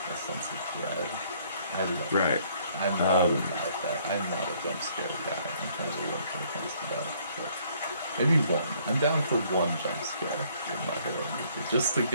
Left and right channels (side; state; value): both; inverted; correlation -0.63